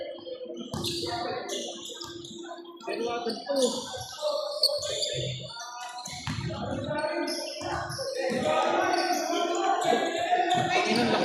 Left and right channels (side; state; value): both; identical; correlation 1.00